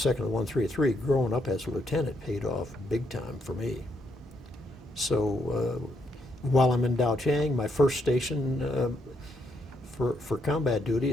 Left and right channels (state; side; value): normal; both; correlation 0.76